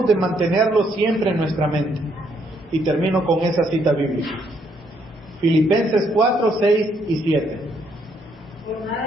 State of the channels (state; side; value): normal; both; correlation 0.71